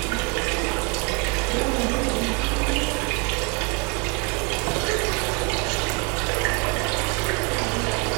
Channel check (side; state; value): left; quieter; 29.2 dB